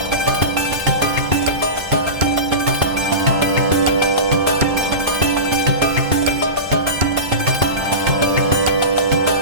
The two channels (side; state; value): left; late; 2.6 ms